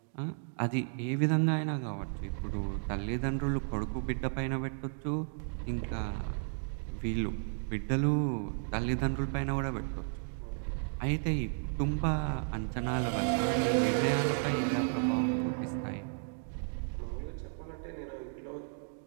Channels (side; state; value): left; silent; 55 dB below the other